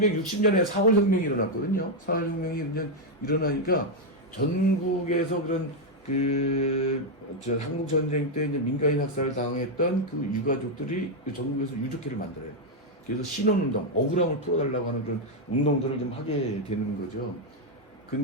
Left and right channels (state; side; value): normal; both; correlation 0.01